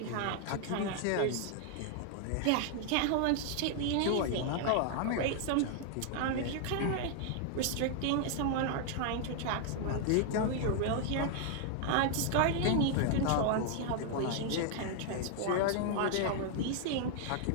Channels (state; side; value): different; both; correlation 0.00